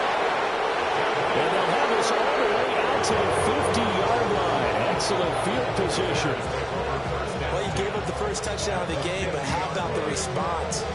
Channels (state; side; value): noise; left; hum, 26 dB below the sound